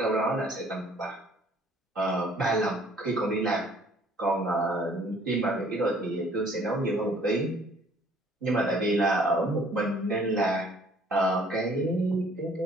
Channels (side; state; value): both; normal; correlation 0.58